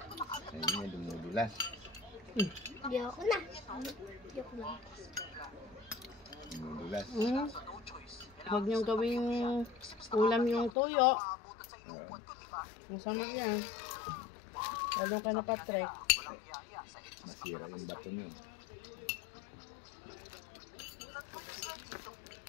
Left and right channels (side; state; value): right; drops out; at 10.7 s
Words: niya, dumudulas. Yok na. Yok na. Dumudulas. Huwag niyong gawing ulam yung tuyo. Oo. Masama yan. Lalo ka na patrek. Masira yung bato niyo.